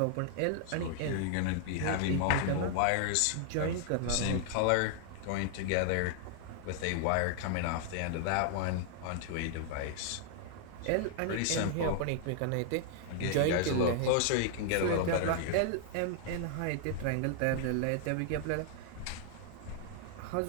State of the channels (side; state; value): both; different; correlation 0.00